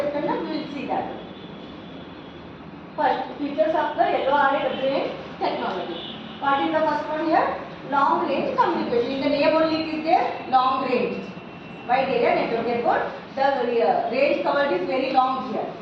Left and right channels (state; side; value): identical; both; correlation 1.00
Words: and we will see that. First, features of the LORA WAN technology. What is the first one here? Long range communication. In the name only it is there, long range. Wide area network. Therefore, the range covered is very long here.